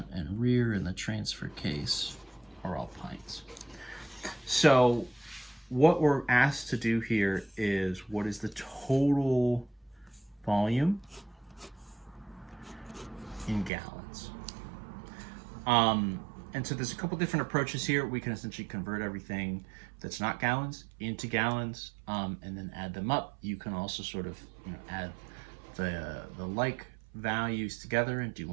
and rear, and the transfer case are all pints. So what we're asked to do here is, what is the total volume in gallons? And so there's a couple different approaches here. We can essentially convert everything that's not gallons into gallons, and then add them up. You can also sort of, you know, add the like values together and do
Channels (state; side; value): drops out; left; at 13.7 s